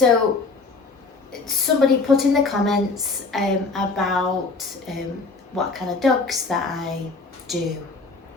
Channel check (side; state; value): right; quieter; 4.0 dB